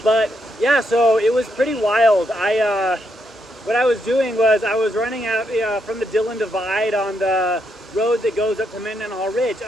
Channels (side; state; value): both; normal; correlation 0.78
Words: But yeah, so it was pretty wild. What I was doing was I was running out from the Dillon Divide on the road that goes up to Mendenhall Ridge,